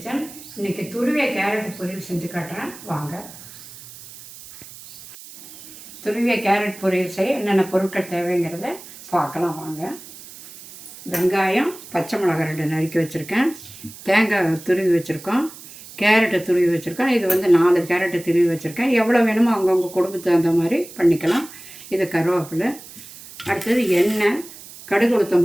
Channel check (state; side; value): noise; right; hiss, 17 dB below the sound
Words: இன்றைக்கி துருவிய carrot பொரியல் செஞ்சு காட்டுறேன் வாங்க. துருவிய கேரட் பொரியல் செய்ய என்னென்ன பொருட்கள் தேவைங்கிறத பார்க்கலாம் வாங்க. வெங்காயம், பச்சை மிளகாய் 2 நறுக்கி வச்சுருக்கேன். தேங்காய் துருவி வச்சுருக்கோம். கேரட்டை துருவி வச்சுருக்கோம். இது 4 கேரட்டை துருவி வச்சுருக்கேன். எவ்வளோ வேணுமோ அவங்கவுங்க குடும்பத்துக்கு தகுந்த மாதிரி பண்ணிக்கலாம். இது கருவேப்பிலை. அடுத்தது எண்ணெய், கடுகு, உளுத்தம்